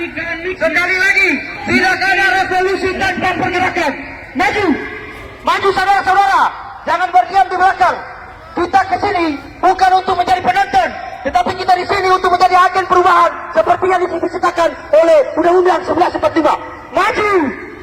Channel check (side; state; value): both; identical; correlation 1.00